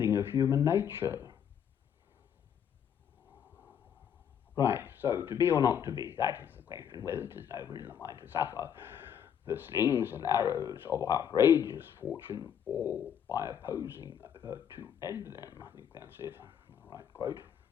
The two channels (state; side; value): quieter; right; 8.6 dB